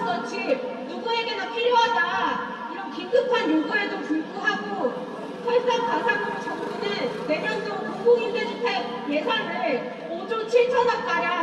집, 누구에게나 필요하다. 이런 긴급한 요구에도 불구하고 설상가상으로 정부는 내년도 공공임대주택 예산을 5조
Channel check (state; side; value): identical; both; correlation 1.00